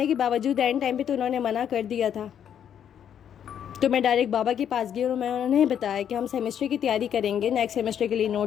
के बावजूद एंड टाइम पे तो उन्होंने मना कर दिया था। तो मैं डायरेक्ट बाबा के पास गई और मैं उन्हें बताया कि हम सेमेस्टर की तैयारी करेंगे, नेक्स्ट सेमेस्टर के लिए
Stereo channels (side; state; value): right; quieter; 9.1 dB